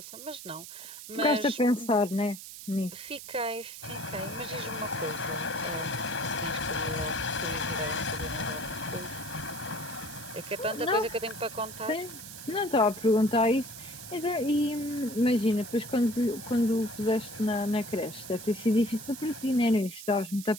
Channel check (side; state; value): right; noise; hiss, 12 dB below the sound